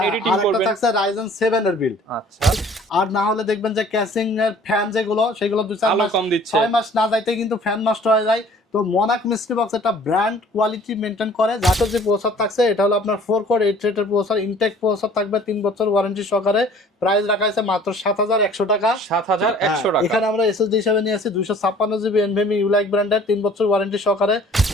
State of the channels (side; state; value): both; normal; correlation 0.52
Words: এডিটিং করবেন থাকছে Ryzen 7 এর বিল্ড। আচ্ছা, আর না হলে দেখবেন যে ক্যাসিং এর ফ্যান যেগুলো সেগুলো 2-4 মাস 6 মাস না যাইতে কিন্তু ফ্যান নষ্ট হয়ে যায়। তো মনাক মিস্ট্রি বক্স একটা ব্র্যান্ড কোয়ালিটি মেনটেন করে। যাতে যে প্রসেসর থাকছে এটা হলো আপনার 4 কোর 8 থ্রেডের প্রসেসর, ইনটেক প্রসেসর থাকবে, 3 বছর ওয়ারেন্টি সহকারে। প্রাইস রাখা আছে মাত্র 7100 টাকা। 7100 টাকা। এখানে আমরা এসএসডি হিসেবে নিয়েছি 256GB NVMe ইউলাইক ব্র্যান্ডের 3 বছর ওয়ারেন্টি সহকারে।